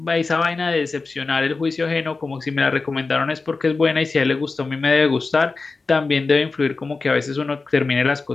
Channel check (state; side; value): quieter; right; 4.0 dB